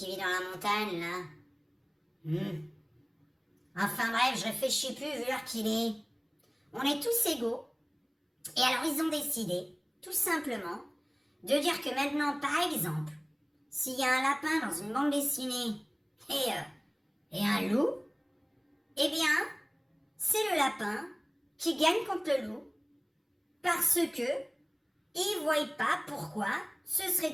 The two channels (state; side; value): identical; both; correlation 1.00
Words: vit dans la montagne, là. Enfin bref, je réfléchis plus vu l'heure qu'il est. On est tous égaux. Et alors ils ont décidé, tout simplement, de dire que maintenant, par exemple, s'il y a un lapin dans une bande dessinée et un loup, eh bien, c'est le lapin qui gagne contre le loup parce que ils ne voient pas pourquoi ce serait